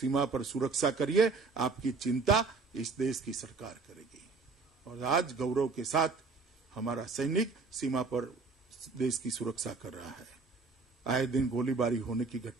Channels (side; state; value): left; quieter; 4.3 dB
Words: पर सुरक्षा करिए, आपकी चिंता इस देश की सरकार करेगी। और आज गौरव के साथ हमारा सैनिक सीमा पर देश की सुरक्षा कर रहा है। आए दिन गोलीबारी होने की